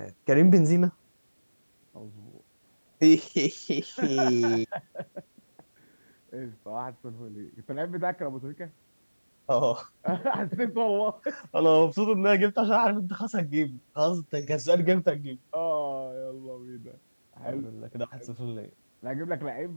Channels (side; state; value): both; inverted; correlation -1.00